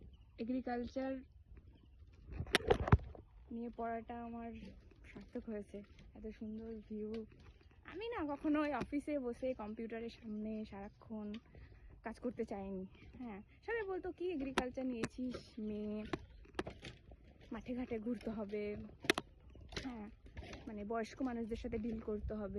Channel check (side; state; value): both; identical; correlation 1.00